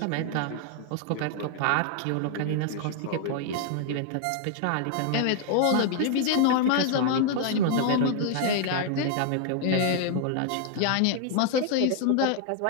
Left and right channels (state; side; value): different; both; correlation 0.00